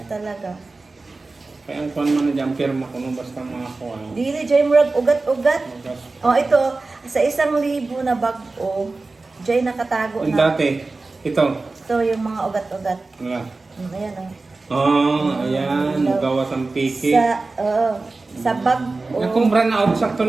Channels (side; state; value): left; quieter; 3.5 dB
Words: talaga. Kaya ang kuhan mo na dyan, pirma ko nung basta mga kuhan. Dili, Jay Murag, ugat-ugat. O, ito, sa 1,000 na bag-o, Jay nakatago Yung na. dati, ito. Ito yung mga ugat-ugat. Wala. Ayan, o. Ayan, gawas ang piki. Sa bag-o. Nakumbra na out, sakto